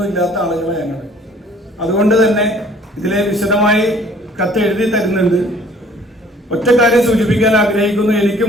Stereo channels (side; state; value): both; normal; correlation 0.55